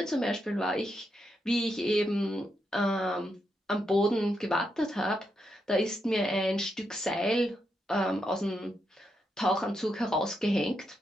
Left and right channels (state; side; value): normal; both; correlation 0.82